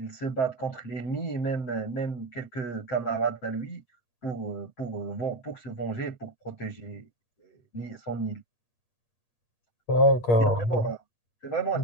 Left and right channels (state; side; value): late; right; 8.4 ms